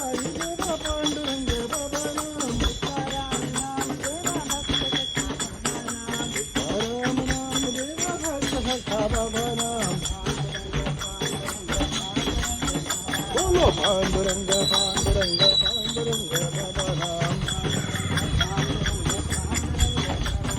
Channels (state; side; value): identical; both; correlation 1.00